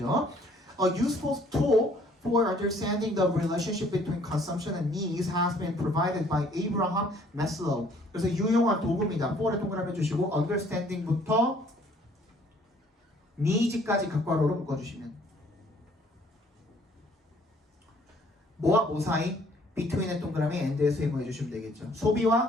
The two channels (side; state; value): both; normal; correlation 0.60